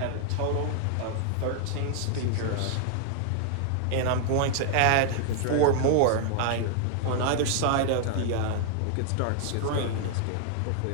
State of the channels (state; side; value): different; both; correlation 0.00